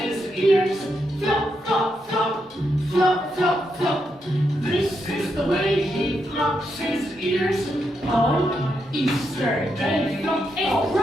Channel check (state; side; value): normal; both; correlation 0.82